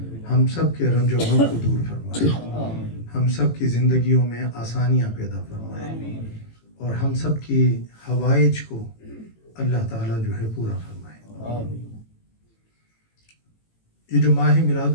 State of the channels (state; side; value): late; right; 18 ms